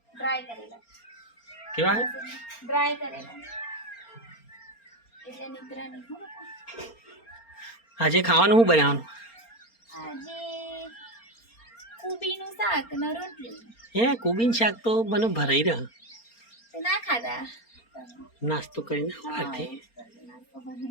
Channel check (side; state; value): right; late; 4.3 ms